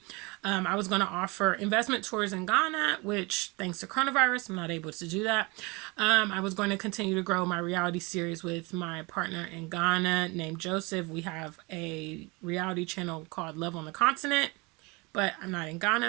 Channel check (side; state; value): left; quieter; 26.7 dB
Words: I was going to offer investment tours in Ghana, which thanks to coronavirus, I'm not able to do that. I was going to continue to grow my reality series with my partner in Ghana named Joseph. We have a reality channel called Love on the Continent, but I'm not in